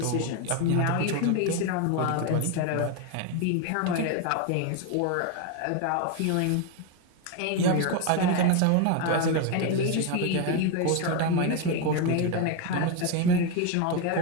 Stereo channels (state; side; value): different; both; correlation 0.02